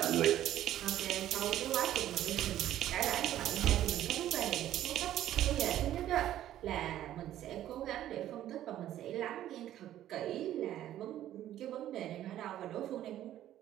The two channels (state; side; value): quieter; left; 12.5 dB